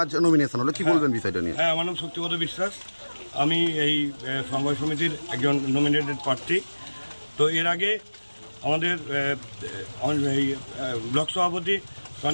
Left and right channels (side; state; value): both; inverted; correlation -1.00